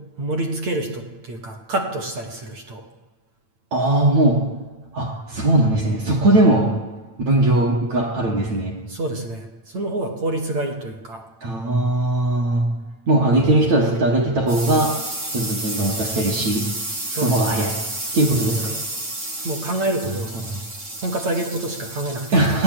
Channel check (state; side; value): late; left; 8.9 ms